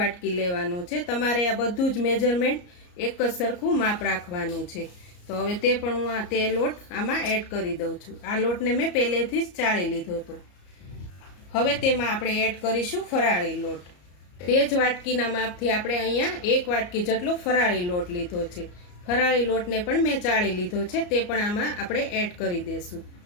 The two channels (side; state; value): right; late; 34 ms